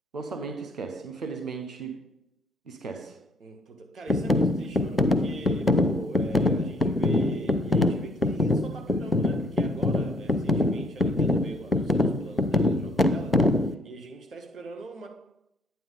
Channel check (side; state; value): both; normal; correlation 0.63